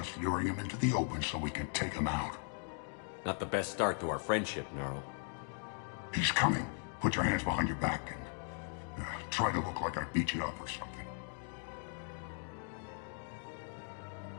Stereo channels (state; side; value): silent; right; 52 dB below the other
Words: luring him into the open so we can take him out. Not the best start to our friendship, Gnarl. He's coming. Put your hands behind your back and try to look like I beat you up or something.